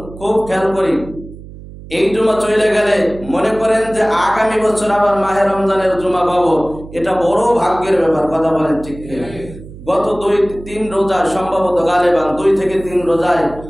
খুব খেয়াল করি। এই জুমা চলে গেলে মনে করেন যে আগামী বছর আবার মাহে রমজানের জুমা পাবো, এটা বড় ভাগ্যের ব্যাপার। কথা বলেন ঠিক কিনা? গত 2-3 রোজা সম্ভবত গালেবান 2 থেকে 3 রোজায়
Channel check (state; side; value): noise; right; hum, 16 dB below the sound